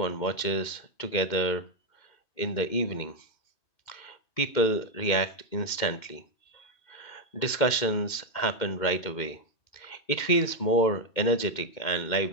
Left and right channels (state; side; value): late; right; 2.1 ms